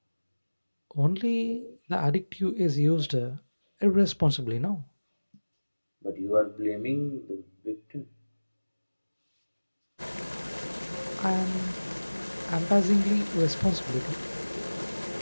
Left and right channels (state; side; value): inverted; both; correlation -1.00